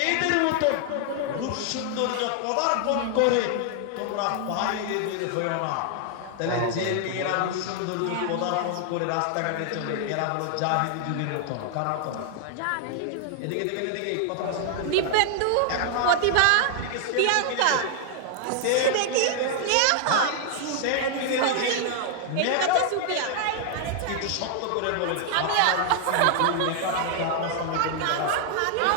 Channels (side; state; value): both; different; correlation 0.00